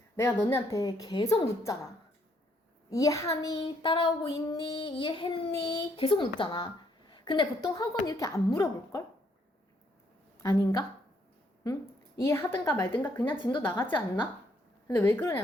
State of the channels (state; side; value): normal; both; correlation 0.70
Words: 내가 너네한테 계속 묻잖아. 이해하니? 따라오고 있니? 이해했니? 계속 묻잖아. 근데 보통 학원 이렇게 안 물어볼걸? 아닌가? 응? 이해하든가 말든가 그냥 진도 나가지 않나? 근데 왜